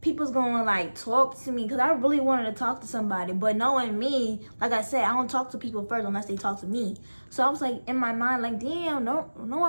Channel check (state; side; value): inverted; both; correlation -1.00